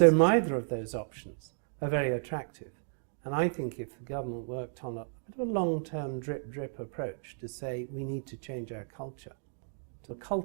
neither of those options are very attractive. And I think if the government worked on a bit of a long-term drip approach to say we need to change our culture to a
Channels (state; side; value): silent; left; digital silence